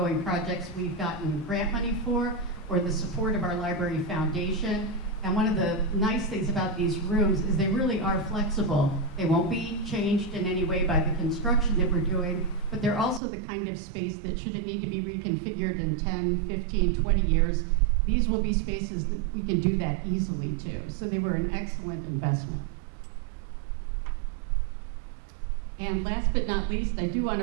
projects we've gotten grant money for, or the support of our library foundation. And one of the nice things about these rooms is they really are flexible. They won't be changed in any way by the construction that we're doing, but they're also the kind of space that should it need to be reconfigured in 10, 15, 20 years, these will be spaces that we can do that easily too. So they were an excellent investment. And last but not least, I do want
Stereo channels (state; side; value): drops out; left; at 13.2 s